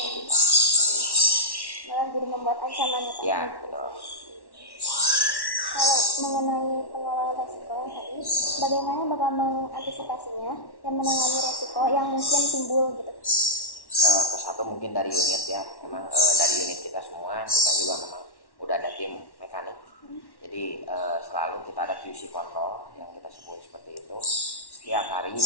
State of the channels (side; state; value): right; late; 1.1 ms